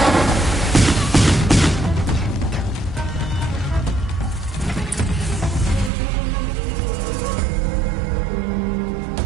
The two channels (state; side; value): drops out; left; at 5.9 s